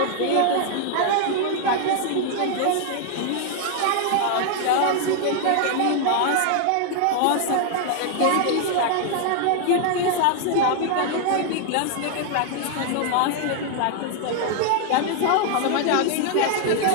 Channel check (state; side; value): different; both; correlation 0.00